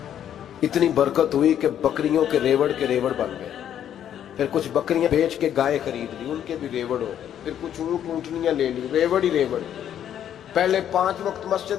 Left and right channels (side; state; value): right; quieter; 10.1 dB